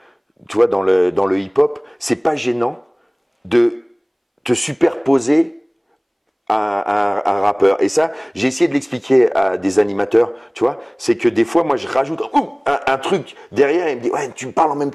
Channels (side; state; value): both; identical; correlation 1.00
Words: tu vois, dans le hip-hop, c'est pas gênant de te superposer un rappeur. Et ça, j'ai essayé de l'expliquer à des animateurs, tu vois, c'est que des fois, moi, je rajoute un truc derrière et il me dit, ouais, tu me parles en même